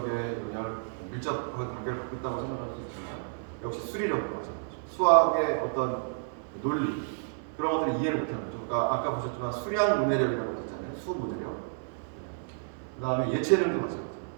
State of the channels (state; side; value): silent; left; 57 dB below the other